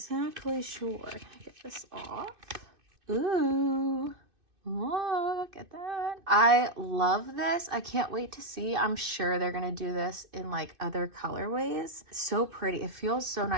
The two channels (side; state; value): left; late; 2.6 ms